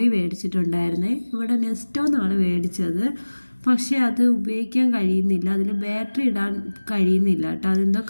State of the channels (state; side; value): inverted; both; correlation -1.00